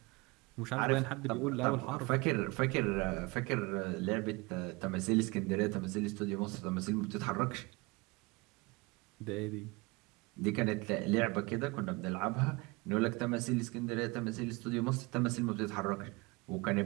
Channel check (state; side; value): quieter; left; 25.3 dB